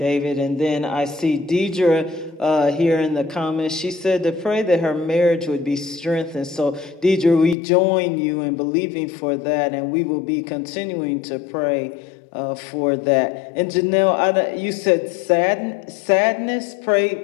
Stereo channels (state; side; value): drops out; right; at 7.6 s